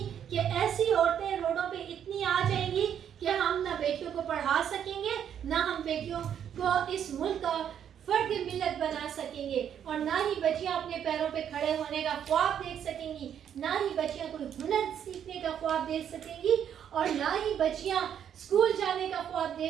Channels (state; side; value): quieter; left; 9.1 dB